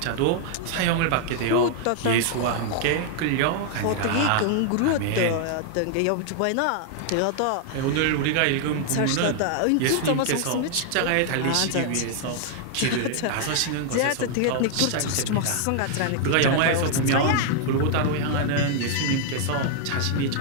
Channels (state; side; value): different; both; correlation 0.00